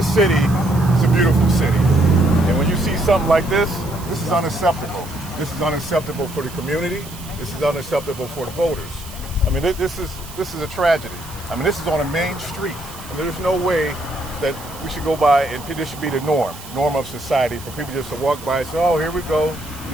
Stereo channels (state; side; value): noise; right; hiss, 16 dB below the sound